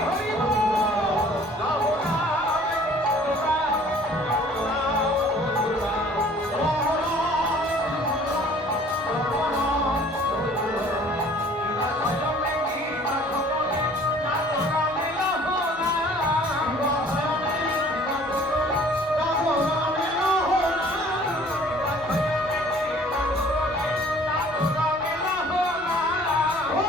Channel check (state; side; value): normal; both; correlation 0.53